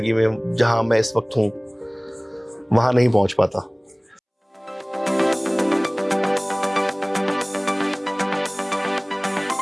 میں جہاں میں اس وقت ہوں وہاں نہیں پہنچ پاتا۔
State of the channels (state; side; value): identical; both; correlation 1.00